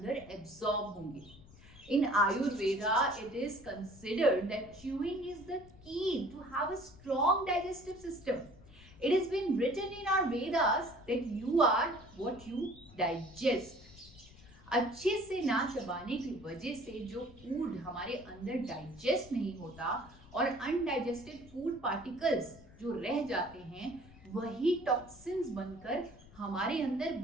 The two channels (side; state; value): left; noise; rumble, 21 dB below the sound